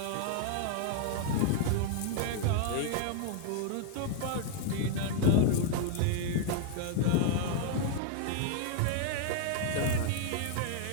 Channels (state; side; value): different; both; correlation 0.00